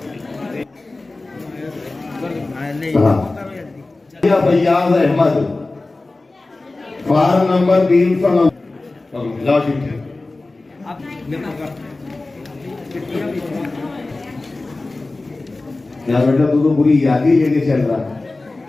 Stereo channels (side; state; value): right; quieter; 3.2 dB